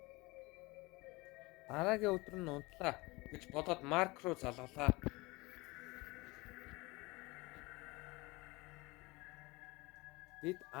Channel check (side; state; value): right; quieter; 23.4 dB